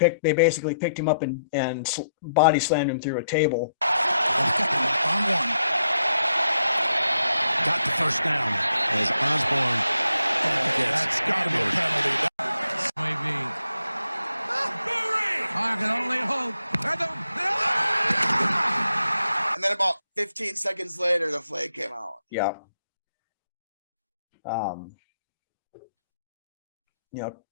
basically picked him up and body slammed him through a table. On 1. Got the first down as Osborne. That's got to be a penalty. Maybe. I can only hope. And then about 15 seconds later, the flag came out. Yeah.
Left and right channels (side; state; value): both; inverted; correlation -0.79